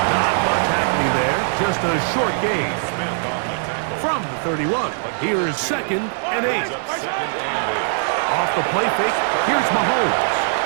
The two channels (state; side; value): silent; left; 65 dB below the other